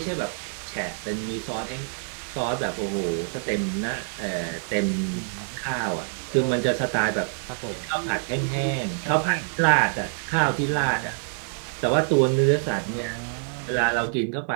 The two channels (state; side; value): silent; left; digital silence